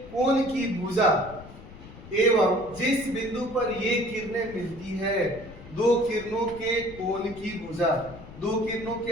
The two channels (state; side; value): noise; left; rumble, 17 dB below the sound